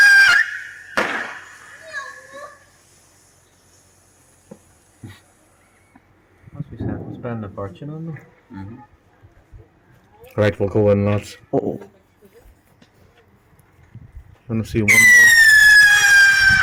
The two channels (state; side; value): identical; both; correlation 1.00